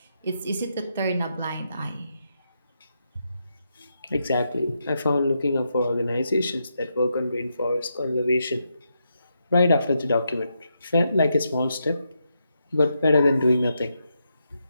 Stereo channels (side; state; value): both; inverted; correlation -0.83